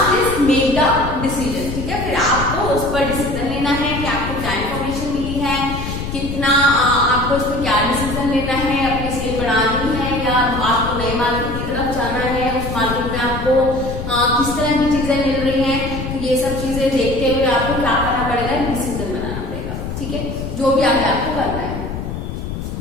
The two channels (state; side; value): noise; left; rumble, 6 dB below the sound